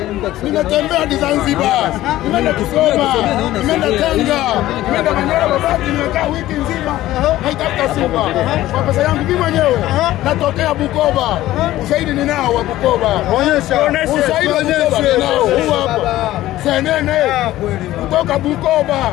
Nimetembea hadi Zanzibar, nimeenda Kigoma, nimeenda Tanga, nimeenda Manyara Babati, nimekaa wiki nzima naitafuta Simba. Kwa pesa yangu mimi mwenyewe natokea Bukoba. Ushahidi ninao wa Bukoba. Onyesha. Ushahidi ninao huu hapa. Senene kutoka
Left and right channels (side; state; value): right; quieter; 15.2 dB